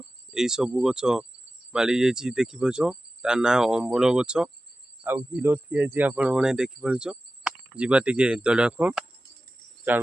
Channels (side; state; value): both; normal; correlation 0.95